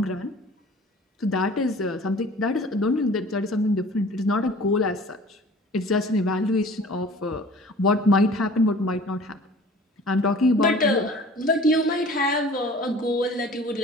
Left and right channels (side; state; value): both; normal; correlation 0.46